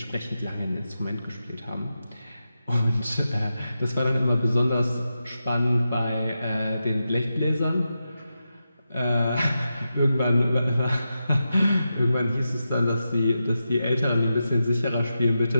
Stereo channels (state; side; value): inverted; both; correlation -0.89